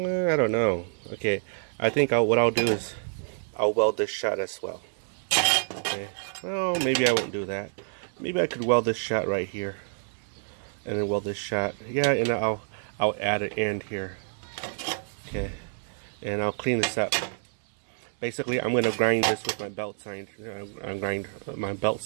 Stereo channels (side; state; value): left; silent; digital silence